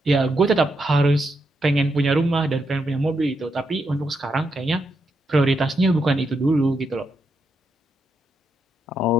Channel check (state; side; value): normal; both; correlation 0.81